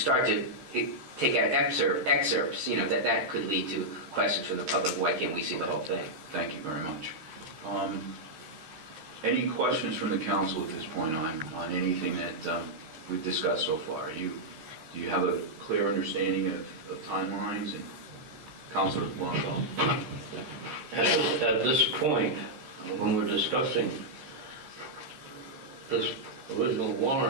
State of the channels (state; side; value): late; left; 13 ms